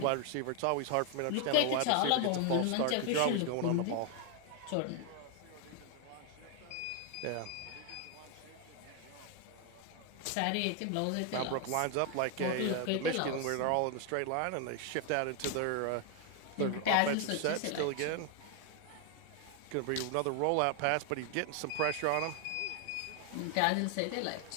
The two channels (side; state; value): both; different; correlation 0.01